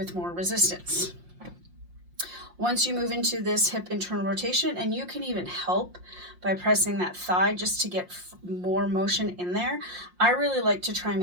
more resistance. Once you move into this hip internal rotation, and you can even help by pressing that thigh just to get more motion in there. I really like to try and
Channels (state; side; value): late; left; 5.6 ms